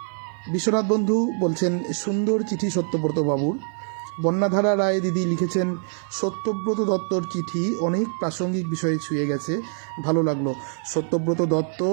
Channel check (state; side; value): silent; left; 55 dB below the other